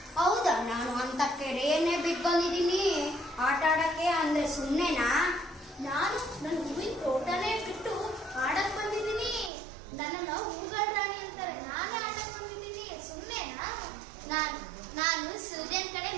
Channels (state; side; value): drops out; left; at 9.5 s